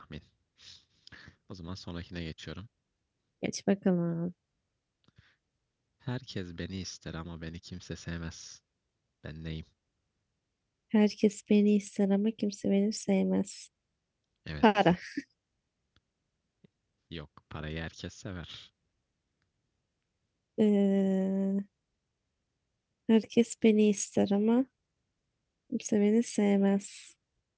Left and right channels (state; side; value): identical; both; correlation 1.00